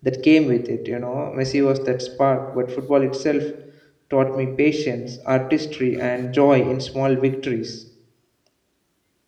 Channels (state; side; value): identical; both; correlation 1.00